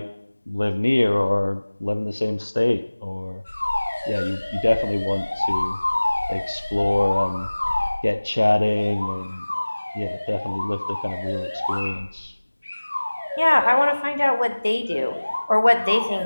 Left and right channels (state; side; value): inverted; both; correlation -1.00